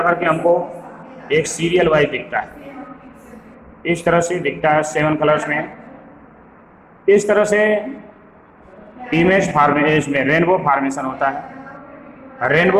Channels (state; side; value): identical; both; correlation 1.00